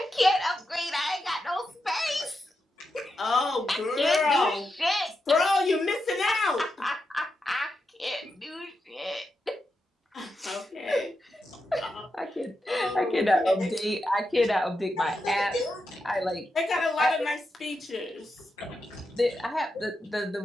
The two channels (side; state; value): both; normal; correlation 0.87